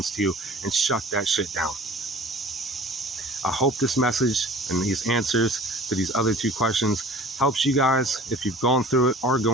to you and shut that shit down. I hope this message and these answers to these other two questions helps you guys if you've gone through it, are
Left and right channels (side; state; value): both; normal; correlation 0.45